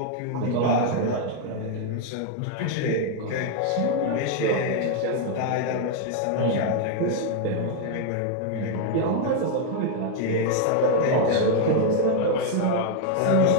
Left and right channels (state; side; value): different; both; correlation 0.00